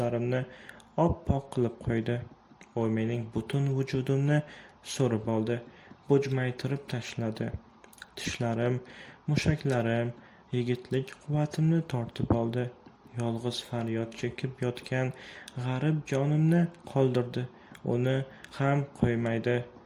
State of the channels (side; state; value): both; identical; correlation 1.00